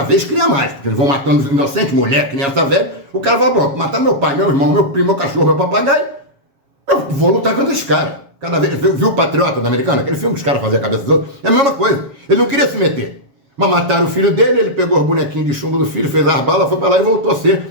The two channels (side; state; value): left; late; 7.2 ms